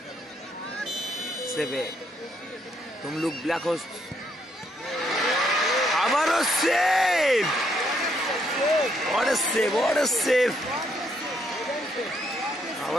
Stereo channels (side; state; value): both; normal; correlation 0.73